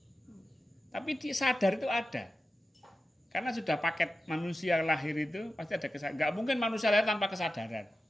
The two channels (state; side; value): normal; both; correlation 0.92